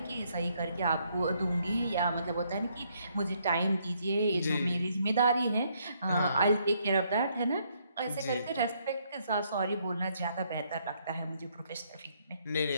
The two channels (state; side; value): inverted; both; correlation -0.71